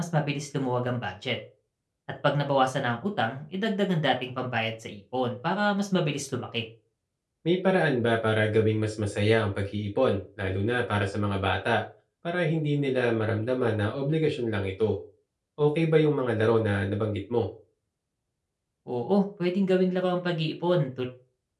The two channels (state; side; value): identical; both; correlation 1.00